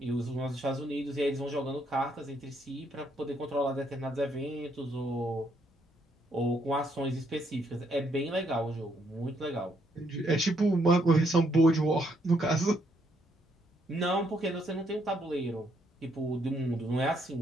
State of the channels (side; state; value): both; normal; correlation 0.72